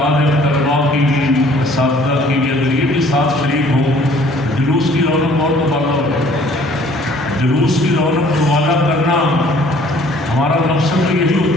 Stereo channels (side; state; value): both; normal; correlation 0.56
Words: ہے طلباء کی بھی اساتذہ کی بھی اگر یہ بھی ساتھ شریک ہوں جلوس کی رونق اور مطالعہ ہو جلوس کی رونق مطالعہ کرنا ہمارا مقصد تو یہی